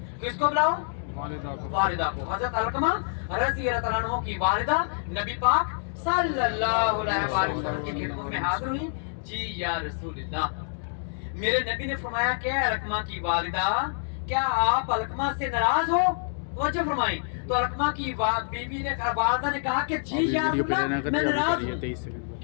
किसको बुलाओ? वालिदा को। हजरत अलकमा रज़ी अल्लाह अन्हु की वालिदा नबी पाक सल्लल्लाहु अलैहि वसल्लम की खिदमत में हाजिर हुई। जी या रसूलल्लाह, मेरे नबी ने फरमाया क्या अलकमा की वालिदा, क्या आप अलकमा से नाराज हो? वजह फरमाई। तो अलकमा की बीवी ने वालिदा ने कहा कि जी या रसूलल्लाह मैं नाराज हूं।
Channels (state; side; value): silent; right; digital silence